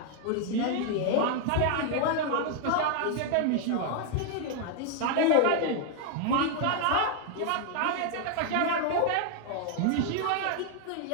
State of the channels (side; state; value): both; different; correlation 0.00